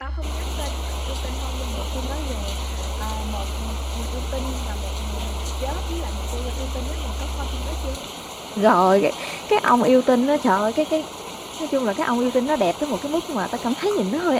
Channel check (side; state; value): both; identical; correlation 1.00